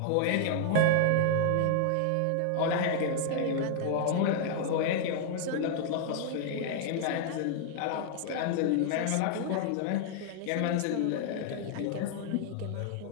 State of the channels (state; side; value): different; both; correlation -0.01